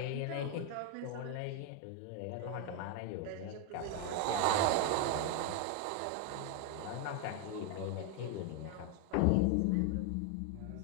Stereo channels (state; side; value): different; both; correlation 0.01